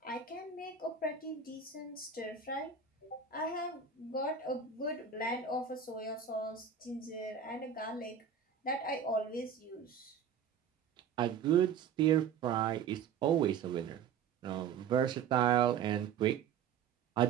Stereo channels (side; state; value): left; quieter; 7.1 dB